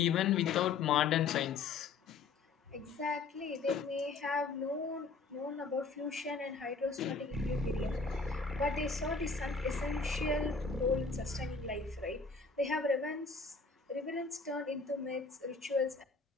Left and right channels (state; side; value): quieter; right; 4.5 dB